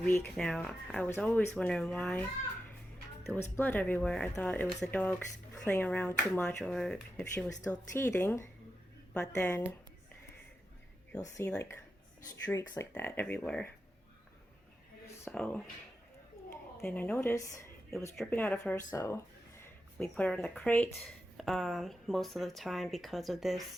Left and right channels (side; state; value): both; normal; correlation 0.89